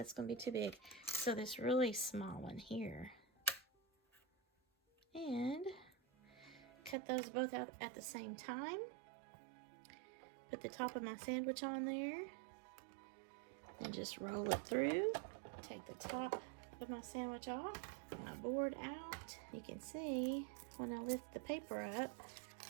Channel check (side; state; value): left; drops out; at 7.0 s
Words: going to be too big. So this really small one here. And cut those both out at the same time. Put the top of my sandwich on there. And just roll it through. Take the top of my sandwich off. My board out. You can see when I lift the paper up,